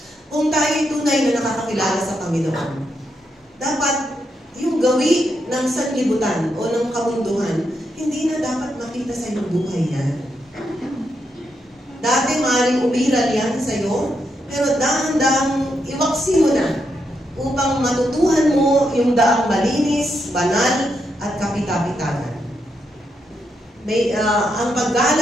Kung tayo'y tunay na nakakakilala sa Panginoon, dapat yung gawi ng sanlibutan o ng kabunduhan, hindi na dapat makita sa iyong buhay yan. Dati maaaring umiral yan sa iyo, pero dahan-dahang iwaksi mo na upang matutuhan mo yung daang malinis, banal, at kapita-pitanan. Ang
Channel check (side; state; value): both; normal; correlation 0.81